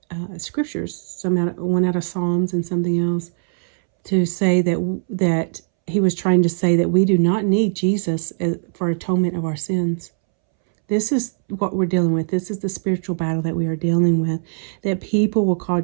scriptures, one out of Psalms and something else, to say that he was trying to say that we do not need Jesus for atonement of our sins. This is what we're dealing with. This is the spiritual battle that we are dealing with, that people will call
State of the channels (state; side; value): silent; left; 65 dB below the other